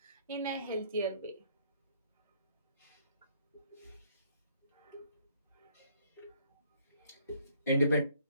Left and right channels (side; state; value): both; inverted; correlation -0.64